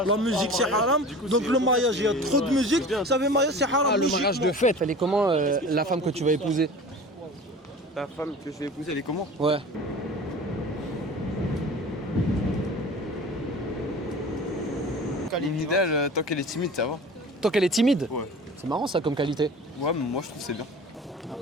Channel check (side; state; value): both; normal; correlation 0.39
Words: La musique c'est haram. Donc le mariage, il y a trop de musique. Ça veut mariage c'est haram. Ah, le mariage de fête, elle est comment la femme que tu vas épouser? La femme que je vais épouser, elle est comment? Ouais. L'idéal, tant qu'elle est timide, ça va. Tant qu'elle est timide? Ouais. C'est marrant ça comme qualité. Ouais, mais moi je trouve que c'est bien.